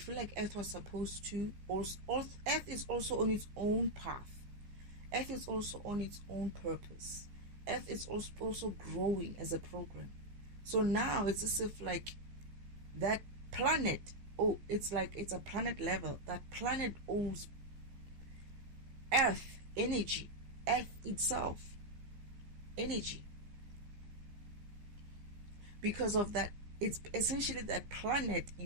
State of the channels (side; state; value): left; late; 15 ms